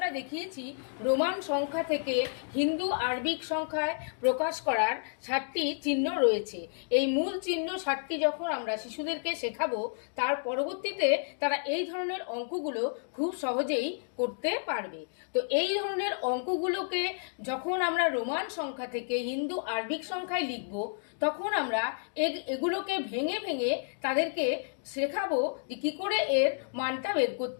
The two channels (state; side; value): silent; right; digital silence